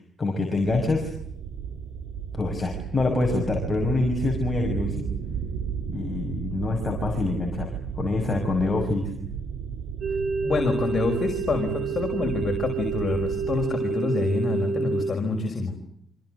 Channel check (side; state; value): both; normal; correlation 0.73